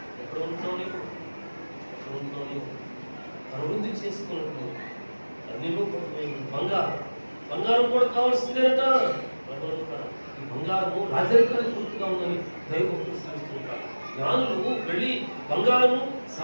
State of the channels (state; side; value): inverted; both; correlation -1.00